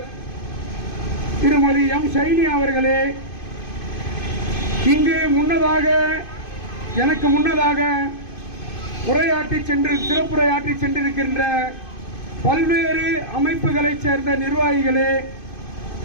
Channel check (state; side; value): late; right; 2.5 ms